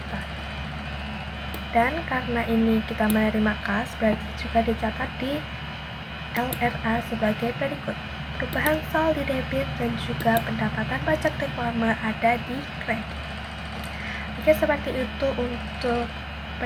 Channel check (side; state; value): both; identical; correlation 1.00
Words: Dan karena ini kita menerima kas, berarti juga dicatat di LRA sebagai berikut. Perubahan sal di debit dan juga pendapatan pajak reklame ada di kredit. Oke, seperti itu untuk